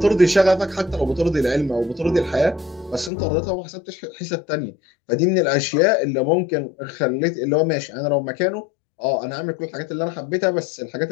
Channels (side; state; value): right; drops out; at 3.1 s